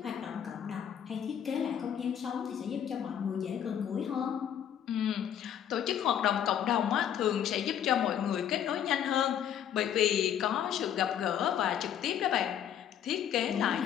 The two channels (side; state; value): right; quieter; 9.6 dB